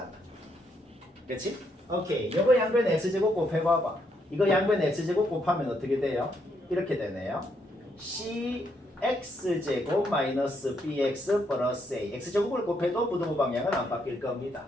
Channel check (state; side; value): normal; both; correlation 0.76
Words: 그렇지? 오케이. 이거 양변 x제곱 곱해봐봐. 이거 양변 x제곱 곱하면 어떻게 돼요? 이렇게 되네요. cx제곱 마이너스 bx 플러스 a. x제곱을 곱해도 부등호 방향은 안 바뀔 겁니다.